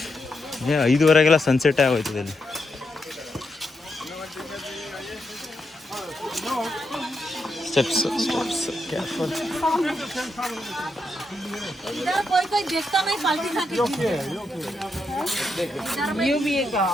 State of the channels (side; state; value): both; normal; correlation 0.82